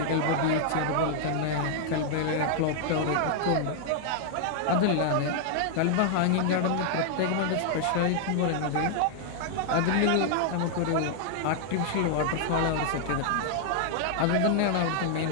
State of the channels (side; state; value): both; different; correlation 0.00